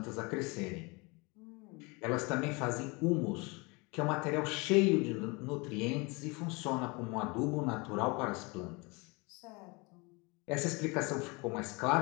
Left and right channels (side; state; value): right; quieter; 27.7 dB